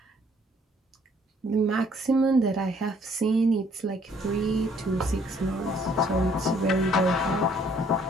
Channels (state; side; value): normal; both; correlation 0.63